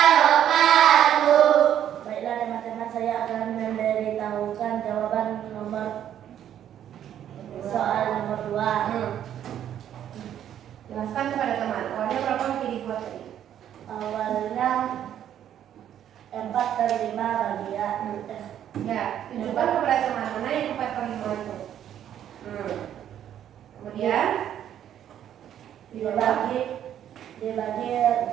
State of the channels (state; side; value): quieter; left; 10.4 dB